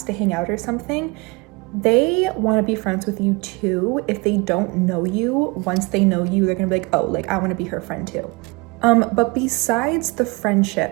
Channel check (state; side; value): quieter; left; 26.4 dB